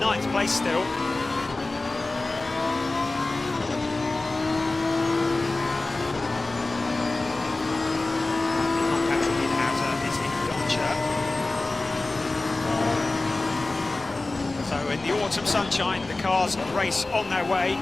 9th place still. Patrick Niederhauser is in Doncha. So in the autumn sunshine, the cars race on their way.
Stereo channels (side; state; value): right; quieter; 3.1 dB